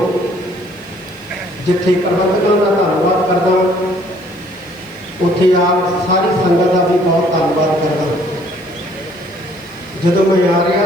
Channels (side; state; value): left; noise; hiss, 29 dB below the sound